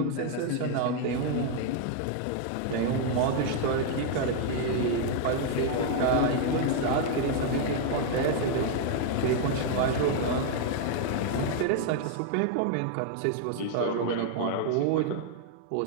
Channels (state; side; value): different; both; correlation 0.00